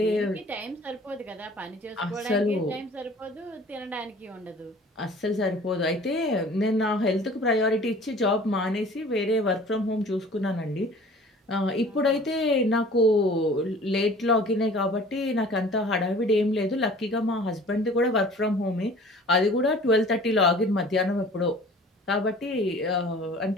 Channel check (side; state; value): both; normal; correlation 0.47